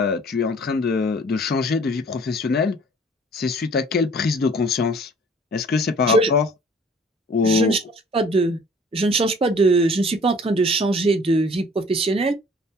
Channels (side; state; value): both; normal; correlation 0.53